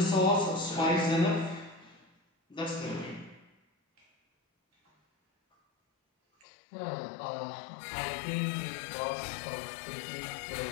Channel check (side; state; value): right; drops out; at 6.5 s